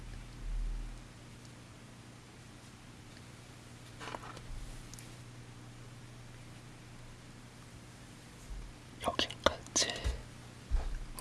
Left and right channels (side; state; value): both; identical; correlation 1.00